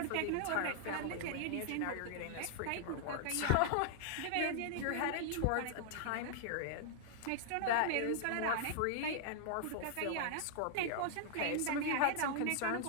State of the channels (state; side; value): different; both; correlation -0.01